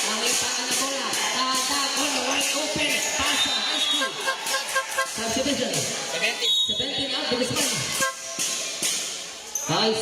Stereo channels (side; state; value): both; identical; correlation 1.00